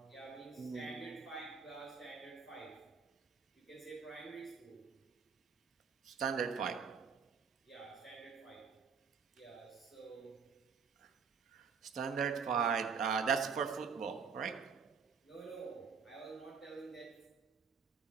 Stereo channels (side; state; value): left; quieter; 6.1 dB